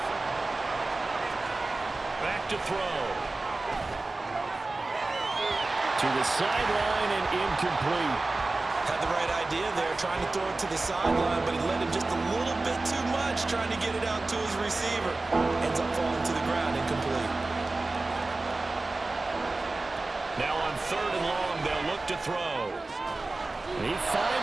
Back to throw. To the sideline and incomplete. Had the right idea there, trying to throw it to the sideline, but he let him just a little bit too much, trying to get it out to his receiver. Ends up falling to the ground, incomplete. Now on 3rd and long, they'll look to throw. He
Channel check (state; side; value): quieter; left; 3.2 dB